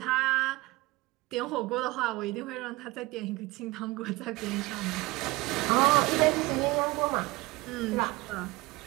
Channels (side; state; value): left; quieter; 21.1 dB